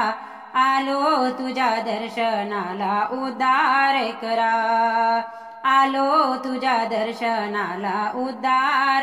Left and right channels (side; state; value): both; identical; correlation 1.00